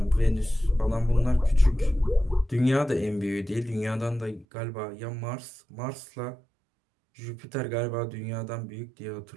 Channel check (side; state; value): left; drops out; at 4.5 s